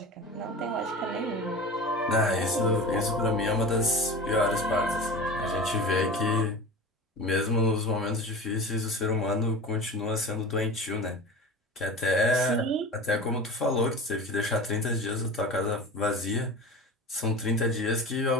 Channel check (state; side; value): normal; both; correlation 0.33